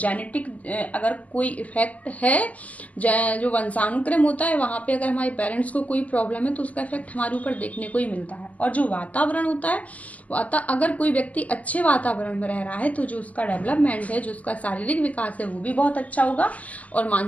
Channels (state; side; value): late; right; 0.074 ms